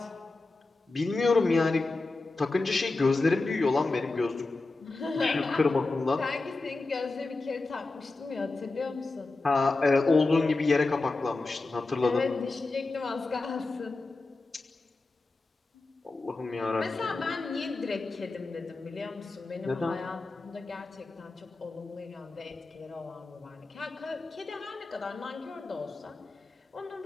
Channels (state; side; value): quieter; right; 3.4 dB